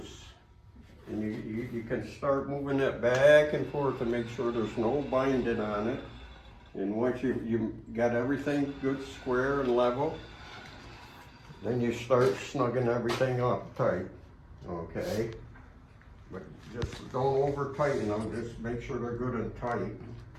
And you can start moving it back and forth to make sure there's no binding on it. And once you got everything good, square and level, then you start snugging everything up tight, okay? But just don't over tighten them, just make sure they're good and tight,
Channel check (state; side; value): identical; both; correlation 1.00